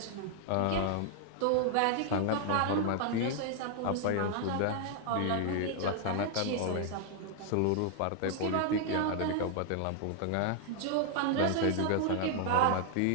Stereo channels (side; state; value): both; different; correlation 0.00